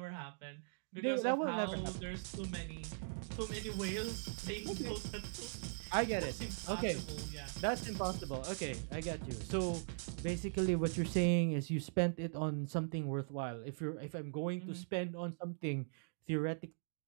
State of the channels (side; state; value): left; silent; digital silence